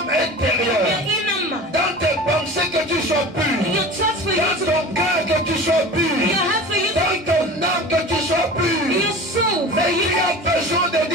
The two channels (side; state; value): both; normal; correlation 0.36